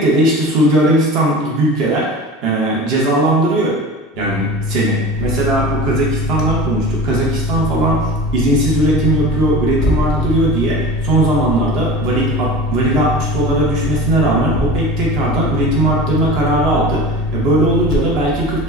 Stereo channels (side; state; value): both; normal; correlation 0.35